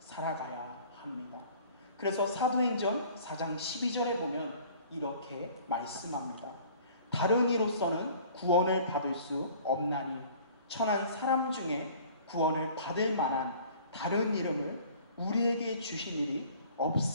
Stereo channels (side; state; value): both; inverted; correlation -0.50